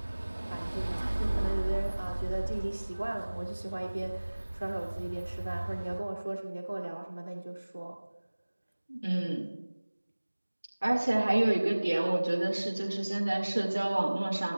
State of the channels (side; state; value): both; inverted; correlation -1.00